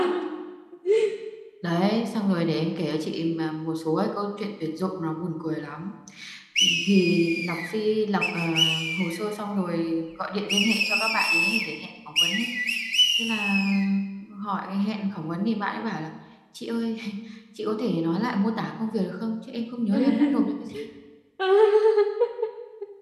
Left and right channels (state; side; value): identical; both; correlation 1.00